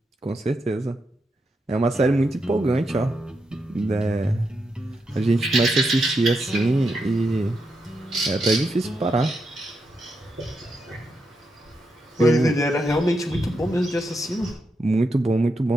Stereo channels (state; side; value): normal; both; correlation 0.84